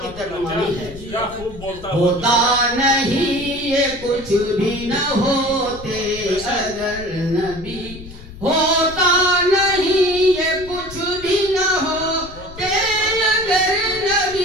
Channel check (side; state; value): left; noise; rumble, 16 dB below the sound